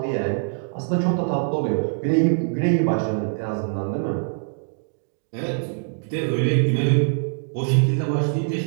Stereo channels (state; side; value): silent; left; digital silence